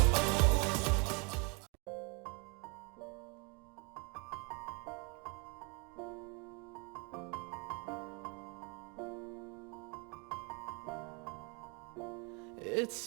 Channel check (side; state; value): left; quieter; 31.2 dB